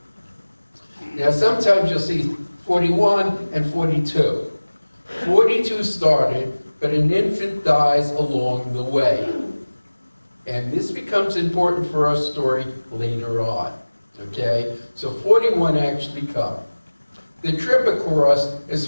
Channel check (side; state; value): both; inverted; correlation -1.00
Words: Now sometimes you'll see 41 and 42. 42 started, but an infant dies along the way. And this becomes important for our story later on, okay? So 41 actually come. The trip across is